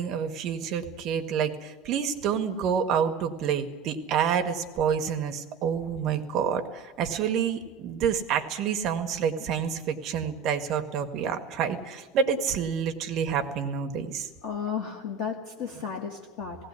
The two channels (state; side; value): quieter; left; 6.3 dB